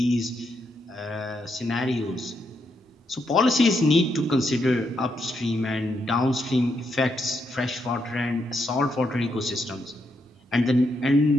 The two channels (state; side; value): normal; both; correlation 0.79